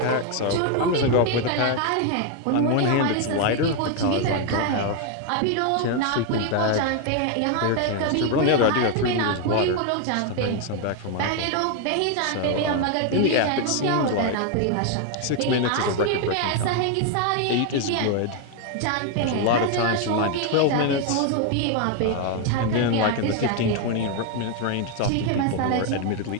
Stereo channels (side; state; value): both; different; correlation 0.01